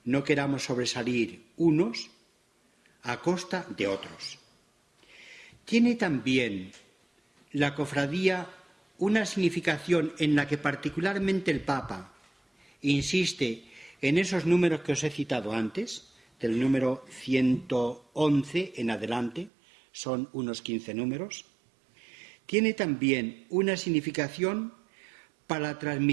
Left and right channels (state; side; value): drops out; left; at 19.5 s